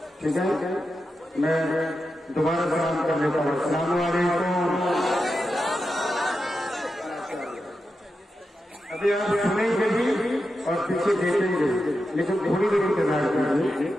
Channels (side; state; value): both; normal; correlation 0.89